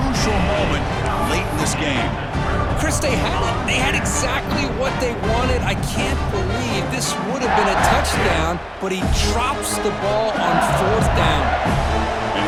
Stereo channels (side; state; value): both; identical; correlation 1.00